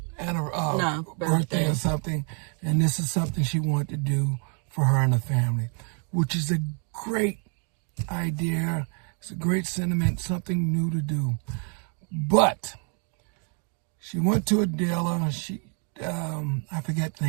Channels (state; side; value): quieter; left; 39.7 dB